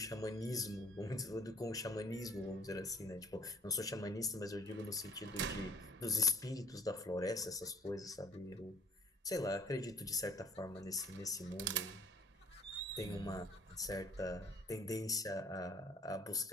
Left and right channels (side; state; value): both; normal; correlation 0.55